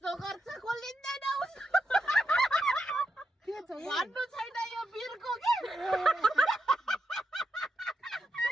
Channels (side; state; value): both; normal; correlation 0.85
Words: गर्छ खोलिँदैन के छ भन्नु छैन यो बिरको के